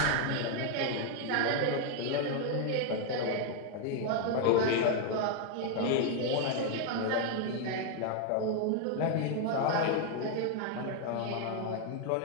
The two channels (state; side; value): different; both; correlation 0.00